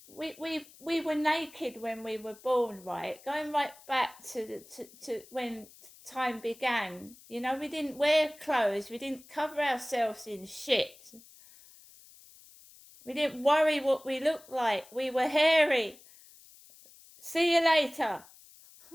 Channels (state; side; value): noise; left; hiss, 23 dB below the sound